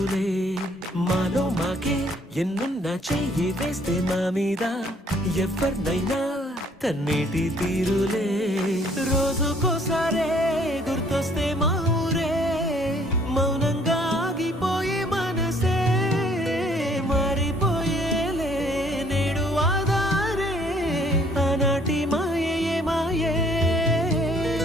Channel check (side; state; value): both; normal; correlation 0.61